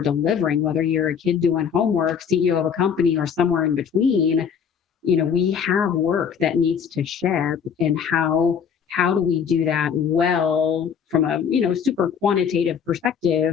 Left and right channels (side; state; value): right; quieter; 7.3 dB